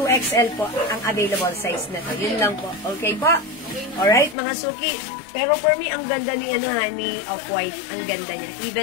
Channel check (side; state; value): right; drops out; at 4.4 s